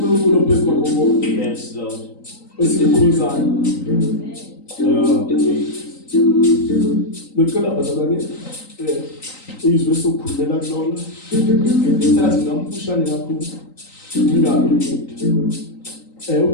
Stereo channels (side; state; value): right; late; 3.9 ms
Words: phezu kwakho konke. Yes, Lord. Esikhuluzayo. Lokela bazalwane izwe sokhulumela kulona. Sathi ngamfushane kakhulu. Ngingabi